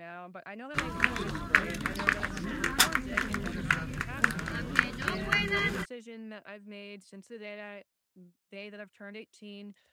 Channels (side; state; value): both; identical; correlation 1.00